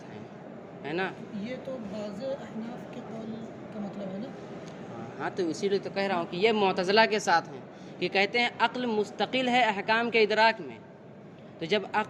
ہیں، ہے نا؟ یہ تو بعض احناف کے قول کا مطلب ہے نا۔ ہاں تو اسی لیے تو کہہ رہا ہوں کہ یہ معتزلہ کے ساتھ ہیں کہ کہتے ہیں عقل مستقل ہے احکام کے ادراک میں، تو جب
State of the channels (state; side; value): identical; both; correlation 1.00